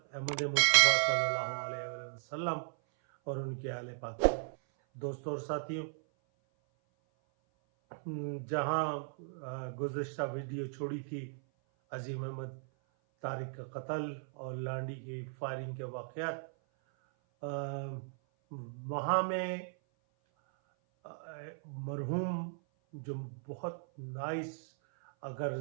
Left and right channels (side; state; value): left; silent; 54 dB below the other